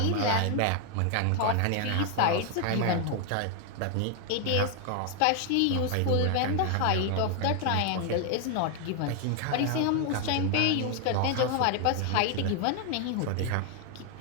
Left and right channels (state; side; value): different; both; correlation 0.00